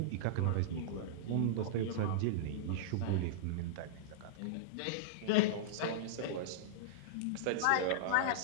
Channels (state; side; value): different; both; correlation -0.02